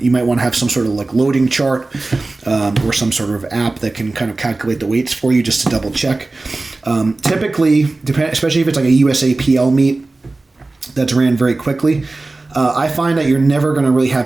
might want to have some sort of like loading chart or some sort of app that can kind of calculate the weights for you just to double check. Typically, especially if it's like a USAPL meet that's ran very quickly, I find that you're never going to really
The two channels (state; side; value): quieter; left; 3.2 dB